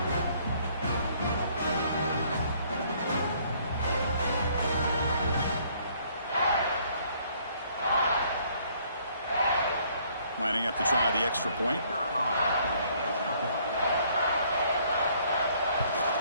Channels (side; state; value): both; inverted; correlation -0.63